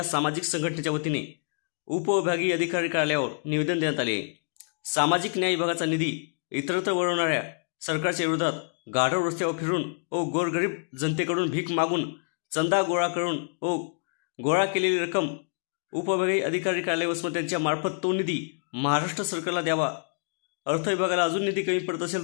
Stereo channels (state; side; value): silent; right; digital silence